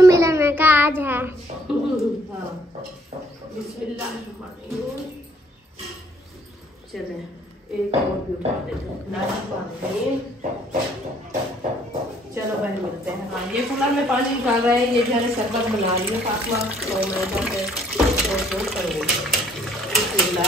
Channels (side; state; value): both; normal; correlation 0.62